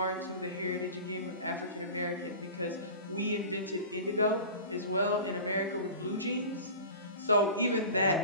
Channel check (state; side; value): inverted; both; correlation -0.36